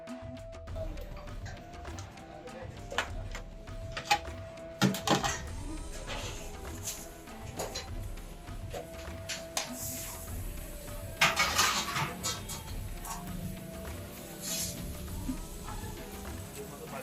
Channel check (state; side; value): identical; both; correlation 1.00